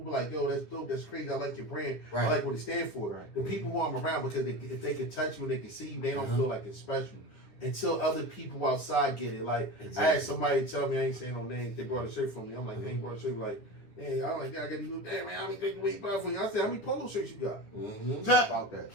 like, yo, that's dope, that's crazy, I like your brand, I like what it stands for. The people who I'm around, because if they can touch you and they can see you, they don't feel like it's special. Until other people outside get it. Like, I had somebody tell me, I ain't saying no names, they brought a shirt for me. I'm like, they ain't brought a shirt, like, hey, I'm like, yeah, I got these new, damn, man, how many people we buy for you? I said, how many polo shirts you got? How about that?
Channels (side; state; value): right; late; 9.9 ms